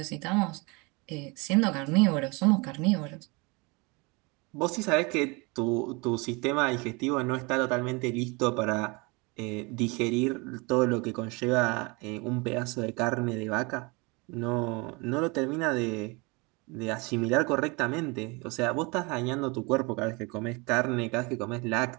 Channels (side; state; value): left; quieter; 27.9 dB